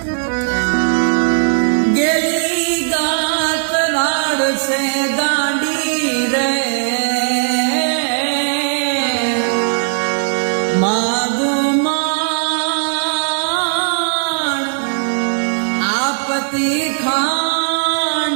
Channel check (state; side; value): silent; left; 57 dB below the other